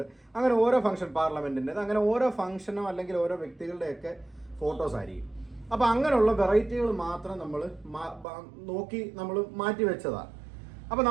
അങ്ങനെ ഓരോ ഫംഗ്ഷൻ, പാർലമെൻറ്റിൻ്റേത്, അങ്ങനെ ഓരോ ഫംഗ്ഷനോ അല്ലെങ്കിൽ ഓരോ വ്യക്തികളുടെയൊക്കെ ഫോട്ടോസ് ആയിരിക്കും. അപ്പോൾ അങ്ങനെയുള്ള വെറൈറ്റികൾ മാത്രം നമ്മൾ നോക്കി നമ്മൾ മാറ്റി വെച്ചതാണ്. അപ്പോൾ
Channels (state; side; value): drops out; left; at 8.2 s